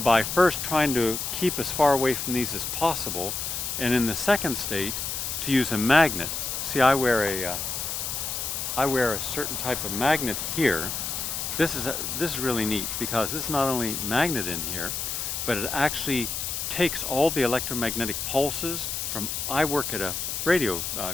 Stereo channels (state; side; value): noise; left; hiss, 3 dB below the sound